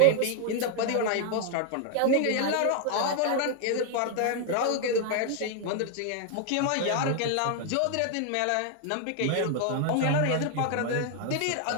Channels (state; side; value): different; both; correlation 0.00